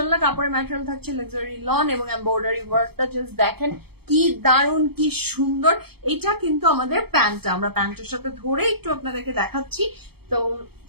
কাপড়ের ম্যাটেরিয়াল থাকছে লাক্সারি লন এবং এমব্রয়ডারি ওয়ার্কটা জাস্ট দেখেন কি দারুণ, কি সুন্দর। এটা কিন্তু আমাদের প্যান্টটা, আমরা প্যান্টের সাথে ধরে একটু আপনাদেরকে দেখাচ্ছি, তো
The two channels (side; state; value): left; late; 0.97 ms